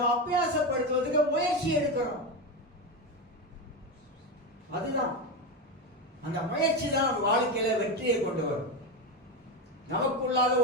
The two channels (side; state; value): both; normal; correlation 0.14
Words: அபியாசப்படுத்துவதற்கு முயற்சி எடுக்கிறோம். அதுதான் அந்த முயற்சி தான் நம்ம வாழ்க்கையில வெற்றியை கொண்டு வரும். நமக்குள்ளாத